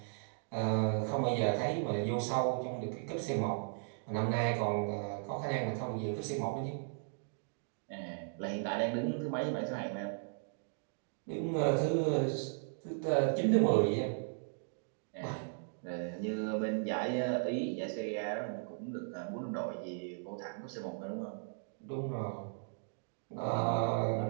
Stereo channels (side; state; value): left; silent; digital silence